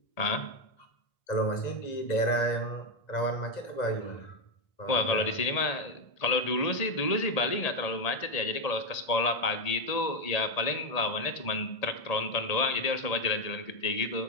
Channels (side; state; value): right; late; 1.8 ms